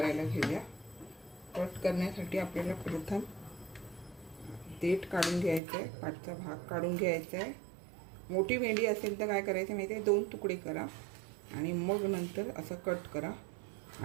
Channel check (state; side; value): drops out; left; at 5.6 s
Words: घेऊया। कट करण्यासाठी आपल्याला प्रथम देठ काढून घ्यायचं आहे, पाठचा भाग काढून घ्यायचा आहे। मोठी भेंडी असेल तर काय करायचं माहिती आहे, 2 तुकडे करा आणि मग नंतर असं कट करा।